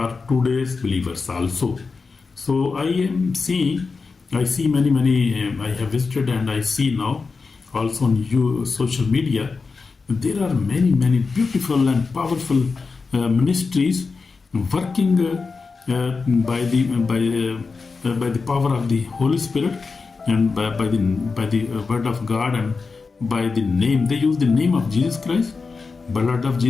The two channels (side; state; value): right; quieter; 4.5 dB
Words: today's believers also. So I see many, I have visited and I see now also on social media, there are many beautiful and powerful ministries working by the power of the Holy Spirit and by the word of God and by the name. They use the name of Jesus Christ, blood of